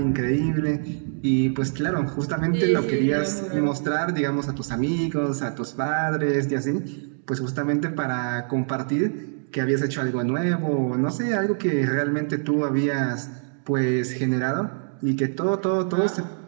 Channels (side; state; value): left; silent; digital silence